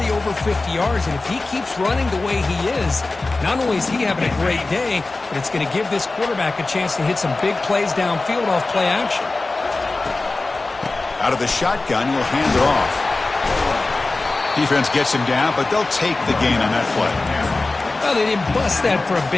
over 50 yards, and if he keeps running the way he is, not only is he having a great day, but it's going to give this quarterback a chance to hit some big plays downfield off play action. Out of the shotgun, he'll hand it off. Defense gets him down, but they'll take the gain on that play. Well, they didn't bust that for a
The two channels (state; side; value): quieter; right; 3.3 dB